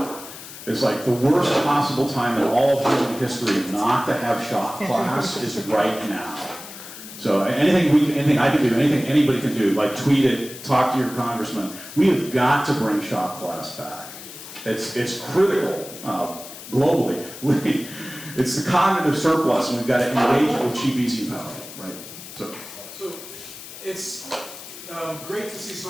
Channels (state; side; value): noise; left; hiss, 14 dB below the sound